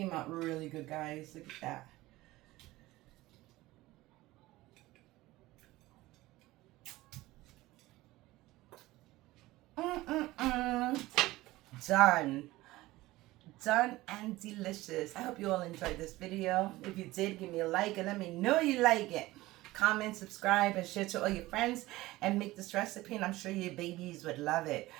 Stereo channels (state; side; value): quieter; left; 18.4 dB